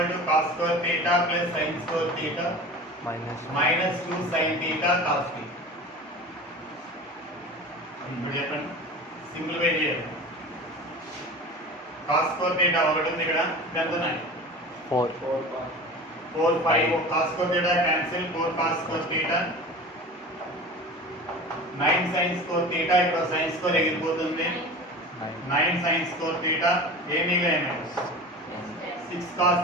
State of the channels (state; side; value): normal; both; correlation 0.35